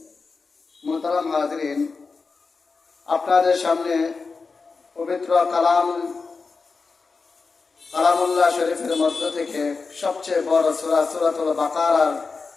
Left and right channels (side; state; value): right; quieter; 4.5 dB